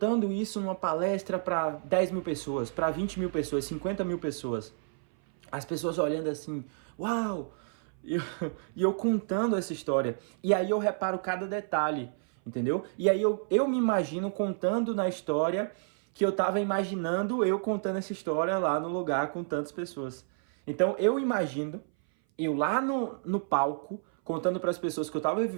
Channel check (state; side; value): silent; left; 57 dB below the other